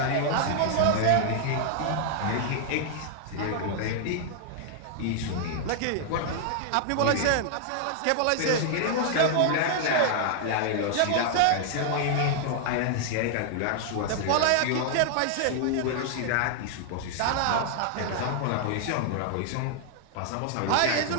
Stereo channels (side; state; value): both; different; correlation -0.01